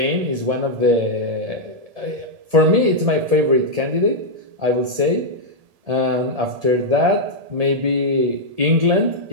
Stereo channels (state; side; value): late; left; 1.7 ms